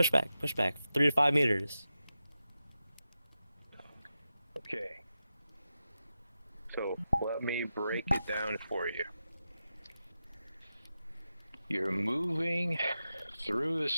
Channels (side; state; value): both; inverted; correlation -0.91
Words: back. Push back. 3 to 5 meters. Okay. So let me break it down for you. You're moving through the